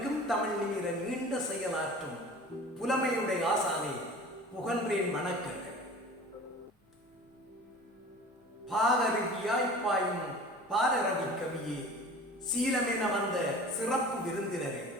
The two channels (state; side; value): normal; both; correlation 0.41